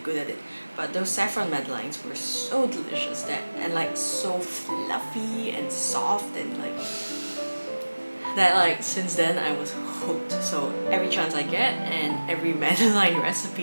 at it. But those saffron Madeleines were so delicious and like so fluffy and soft and like since then I was hooked. So every chance I get and every Madeleine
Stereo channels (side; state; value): both; inverted; correlation -1.00